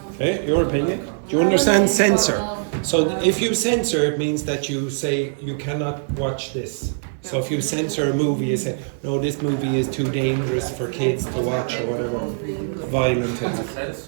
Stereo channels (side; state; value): left; silent; digital silence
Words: Okay, your opinion? Do you understand censor? So if you censor, it means that you say you cannot watch this. So if you censor a movie, you say, no, this movie is too dangerous for kids to watch or whatever. Violent.